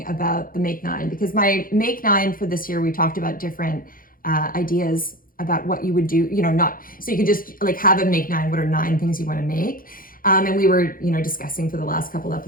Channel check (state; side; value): late; right; 0.41 ms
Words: about the Make 9, because my Make 9 for this year, we talked about different ideas about what you would do, not, so you could just like have a Make 9, what are 9 things you want to make? And we were, discussing for the last couple